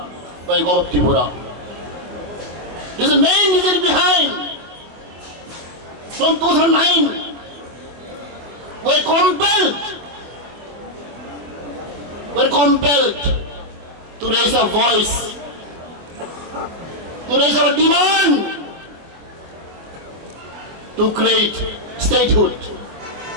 by the government of Tripura. This is the main reason behind. From 2009, we are compelled to raise our voice, to raise our demand to create statehood,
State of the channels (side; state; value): left; late; 25 ms